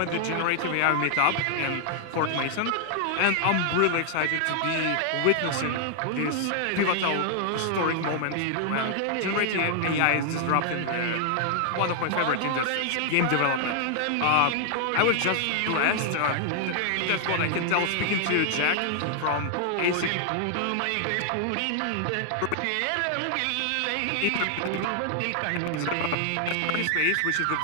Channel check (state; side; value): different; both; correlation 0.00